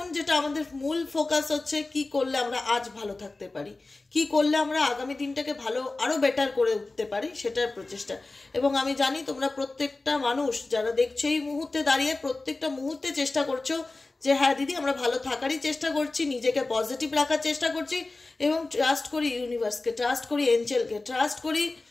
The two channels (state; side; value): quieter; right; 3.3 dB